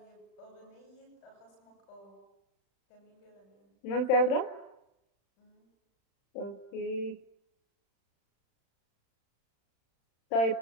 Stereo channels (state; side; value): late; right; 35 ms